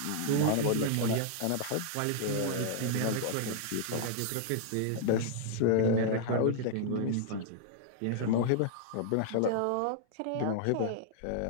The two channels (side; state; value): both; different; correlation -0.01